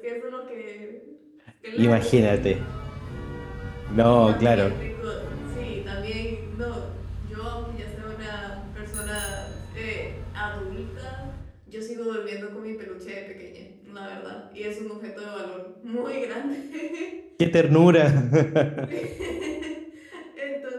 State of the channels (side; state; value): both; identical; correlation 1.00